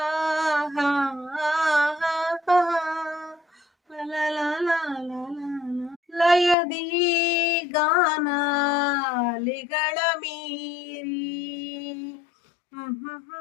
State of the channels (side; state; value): right; drops out; at 6.6 s